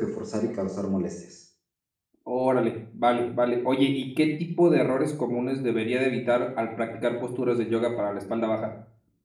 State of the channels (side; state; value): both; identical; correlation 1.00